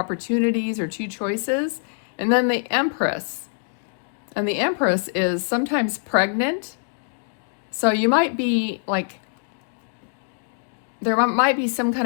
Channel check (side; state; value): right; silent; digital silence